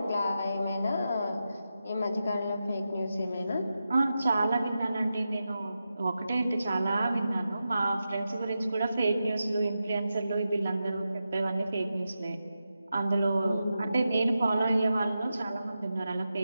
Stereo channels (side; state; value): both; inverted; correlation -0.90